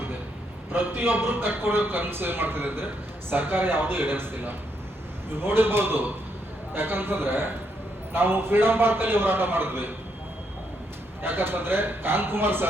ಪ್ರತಿಯೊಬ್ರು ಕಟ್ಕೊಡೋ ಕನ್ಸು ಏನ್ ಮಾಡ್ತಿದೆ ಅಂದ್ರೆ ಸರ್ಕಾರ ಯಾವುದೂ ಈಡೇರಿಸ್ತಿಲ್ಲ. ನೀವು ನೋಡಿರ್ಬೋದು, ಯಾಕಂತಂದ್ರೆ ನಾವು ಫ್ರೀಡಂ ಪಾರ್ಕ್ ಅಲ್ಲಿ ಹೋರಾಟ ಮಾಡಿದ್ವಿ. ಯಾಕಂತಂದ್ರೆ ಕಾಂತಕುಮಾರ್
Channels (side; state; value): both; normal; correlation 0.77